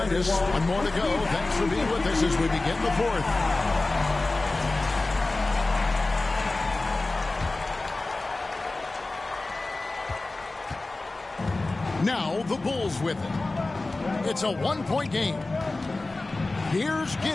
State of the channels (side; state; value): right; quieter; 3.2 dB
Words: us. One more to go. Thanks for being with us as we begin the fourth. Now the Bulls with it. It's a one-point game. Here's